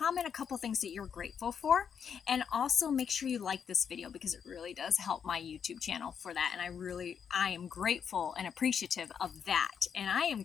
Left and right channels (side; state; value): right; quieter; 7.3 dB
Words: a couple things that you're grateful for. And also make sure you like this video, because it really does help my YouTube channel for that. And I am grateful and appreciative of that. And I am